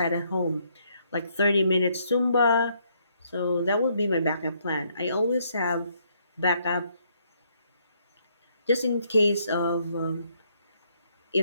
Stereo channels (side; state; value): both; inverted; correlation -0.71